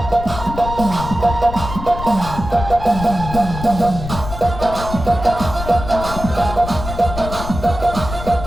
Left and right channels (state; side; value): noise; left; rumble, 8 dB below the sound